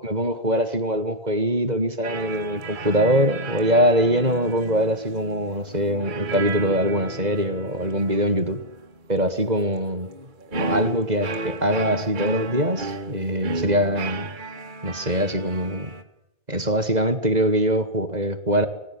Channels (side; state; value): left; late; 2.0 ms